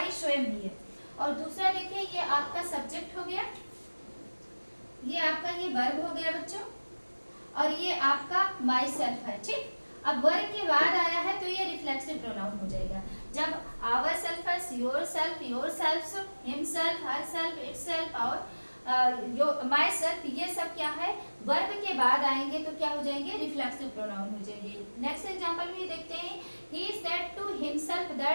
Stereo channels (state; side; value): inverted; both; correlation -1.00